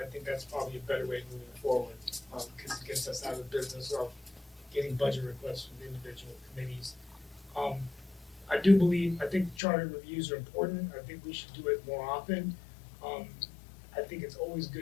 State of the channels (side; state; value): right; drops out; at 9.6 s